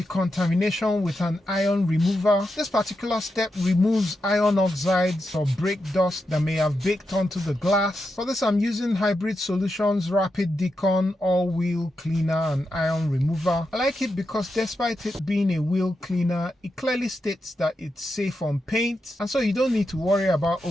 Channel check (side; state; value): both; normal; correlation 0.87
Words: with an iron remover. This particular step removes iron oxides or brake dust that may have baked onto the glass. For this I'm using Hybrid Solutions Rapid Decon all-wheel cleaner and iron remover. I like it because despite it being a wheel cleaner, it clearly states that it's safe on paint, and so you don't need to worry about